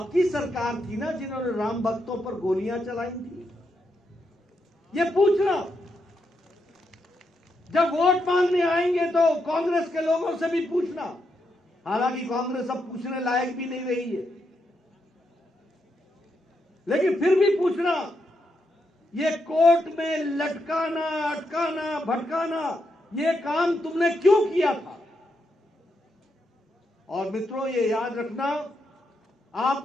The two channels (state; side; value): normal; both; correlation 0.82